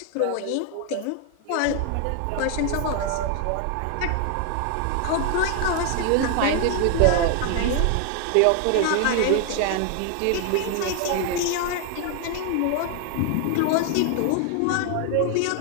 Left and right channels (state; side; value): different; both; correlation 0.00